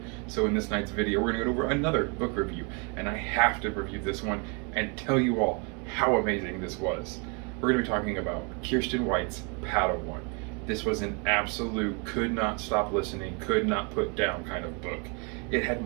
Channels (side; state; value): left; quieter; 34.1 dB